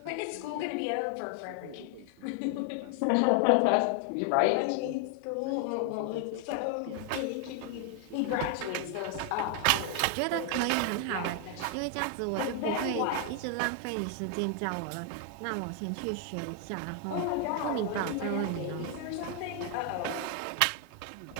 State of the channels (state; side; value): different; both; correlation 0.00